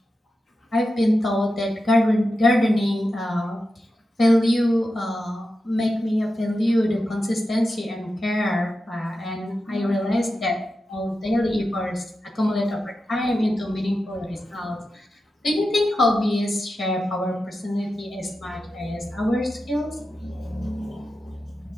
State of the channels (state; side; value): normal; both; correlation 0.91